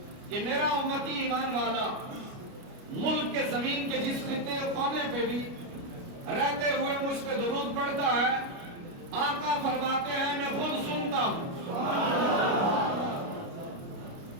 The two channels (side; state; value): left; late; 29 ms